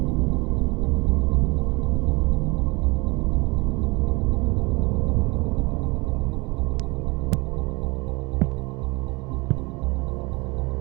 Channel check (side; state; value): left; quieter; 26.2 dB